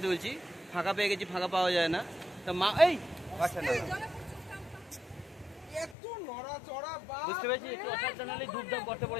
তুলছি, ফাঁকা পেয়ে গেছি, ফাঁকা পাওয়া যায় না। তো মা এই বুঝতে পেরেছি, একটু অসাবধান হলে ধূপধাপ করতে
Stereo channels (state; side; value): drops out; right; at 6.0 s